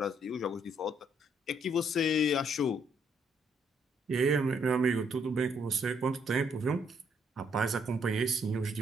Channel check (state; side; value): normal; both; correlation 0.70